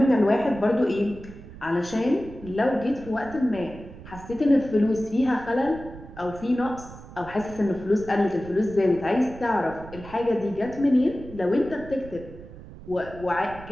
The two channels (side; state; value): right; noise; rumble, 16 dB below the sound